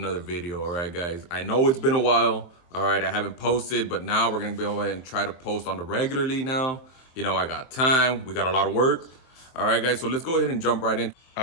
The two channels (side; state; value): right; late; 23 ms